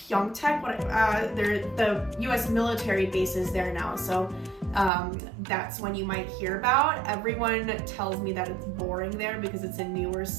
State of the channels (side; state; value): left; drops out; at 4.9 s